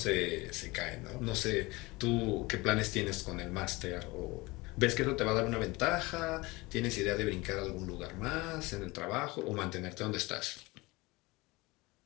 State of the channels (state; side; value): quieter; right; 22.8 dB